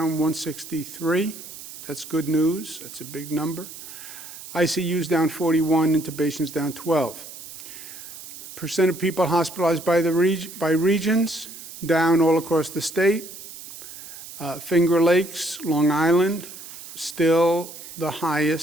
163. That's good news. That's a big number. ICUs down 41, intubations down 12. Percent of people hospitalized by regions, down all across the state. Finger Lakes, Long Island, still the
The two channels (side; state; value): right; noise; hiss, 14 dB below the sound